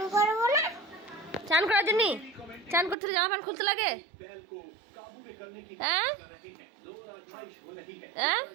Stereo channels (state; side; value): drops out; left; at 3.0 s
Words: করবো না। চান করার জন্য? চান করতে জামা প্যান্ট খুলতে লাগে? হ্যাঁ হ্যাঁ,